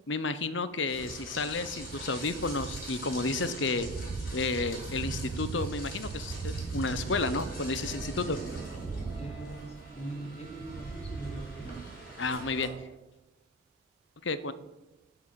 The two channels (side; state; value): both; normal; correlation 0.24